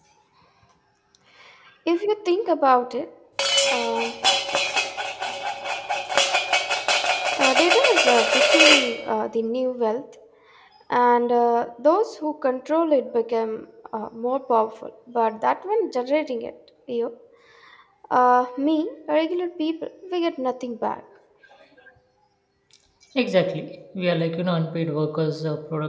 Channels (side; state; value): both; identical; correlation 1.00